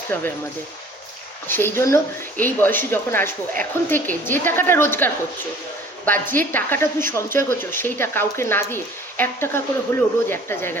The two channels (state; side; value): normal; both; correlation 0.50